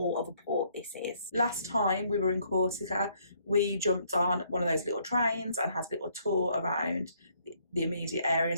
of a port this is. Last time we were in Corsica, we jumped on one of those little trains and had a little tour around the immediate area,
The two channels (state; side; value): inverted; both; correlation -0.67